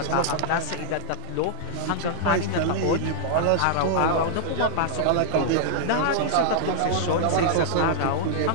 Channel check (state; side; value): different; both; correlation -0.01